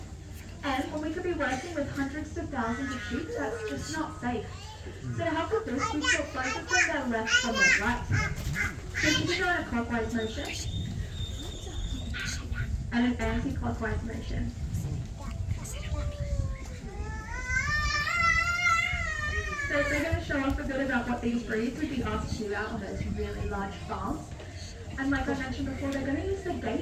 And when we could be working with hundreds of thousands of sheep, that's just not safe. So to help with this, we swap both of them their left from their right. So you can go in a clockwise motion and an anti-clockwise motion. So we're going to show off a bit about what these breeds would be asked to do out on those really large farms. And like I mentioned before, they're going to use the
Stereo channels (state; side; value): identical; both; correlation 1.00